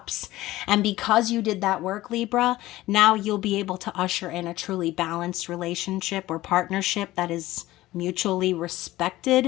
And because you did that work, Libra, now you'll be able to usher in a truly balanced relationship or partnership that is mutually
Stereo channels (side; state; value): right; quieter; 16.8 dB